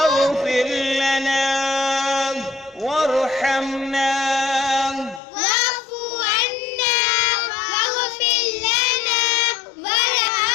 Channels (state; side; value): drops out; right; at 5.2 s